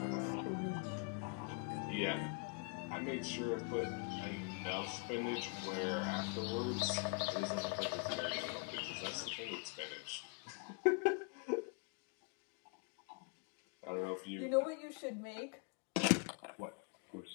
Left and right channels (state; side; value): quieter; right; 34.6 dB